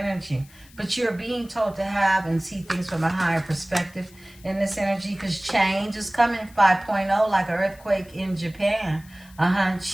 But you're being told to have and see things from a higher perspective in this energy, because change is coming 5.0, like an earthquake in Japan.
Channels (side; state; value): left; noise; hiss, 25 dB below the sound